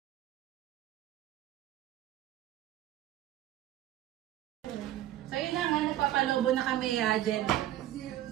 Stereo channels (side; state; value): left; quieter; 13.3 dB